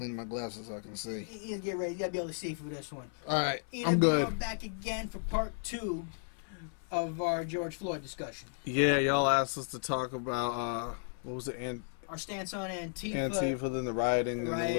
my glasses so I can see. You get ready. You gotta be able to see for this one. All right, I'm good. We're back again for part 2 of our George Floyd discussion. Yeah, y'all asked us to talk about what was it? Our stance on Antifa, then the rioting, and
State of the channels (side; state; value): right; silent; 55 dB below the other